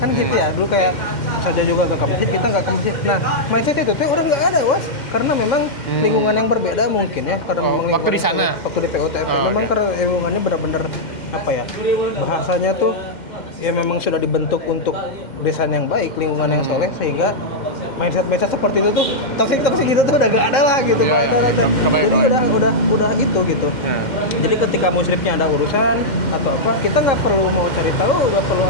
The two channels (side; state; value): right; late; 2.1 ms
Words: kan gitu ya. Dulu kayak saja juga ke masjid, kita nggak ke masjid. Nah, mindset itu tuh orang nggak ada was, karena memang lingkungan yang berbeda mungkin ya, karena memang waktu di sana, waktu di PUTM memang karena lingkungannya benar-benar apa ya, bahasanya tuh ya memang sudah dibentuk untuk desain yang baik, lingkungan yang soleh, sehingga mindset seperti itu tuh toksik itu tuh udah gak ada lah gitu. Jadi udah itu gitu. Jadi ketika musyrifnya ada urusan atau apa, kita nggak perlu mau cari tahu, nggak perlu